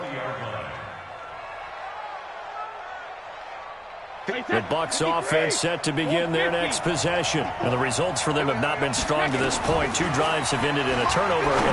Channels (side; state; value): both; identical; correlation 1.00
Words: The Bucs offense set to begin their next possession. And the results for them have not been strong to this point. 2 drives have ended in a turnover and